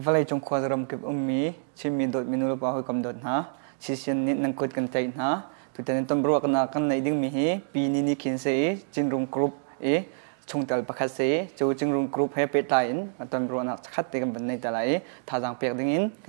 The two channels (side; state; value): left; silent; digital silence